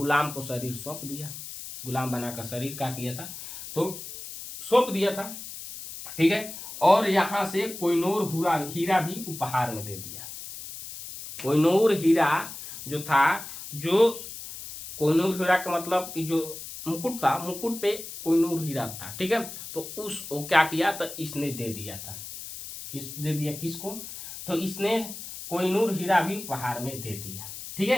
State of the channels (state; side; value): noise; left; hiss, 11 dB below the sound